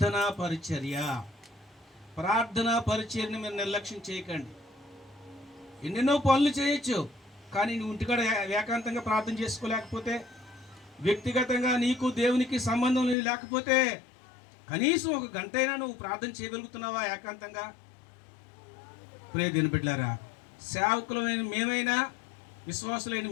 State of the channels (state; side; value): drops out; right; at 13.2 s